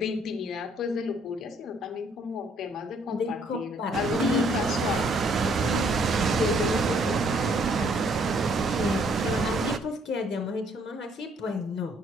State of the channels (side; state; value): both; normal; correlation 0.65